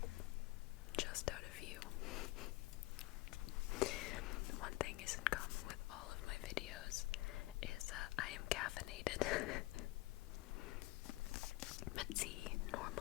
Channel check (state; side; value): quieter; right; 19.9 dB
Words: Just out of view. One thing is in common with all of my videos is I am caffeinated. But see,